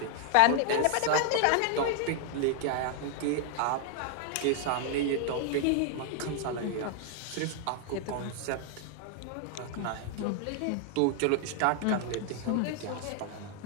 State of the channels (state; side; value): different; both; correlation 0.00